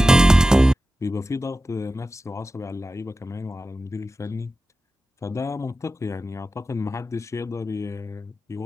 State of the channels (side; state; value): both; normal; correlation 0.93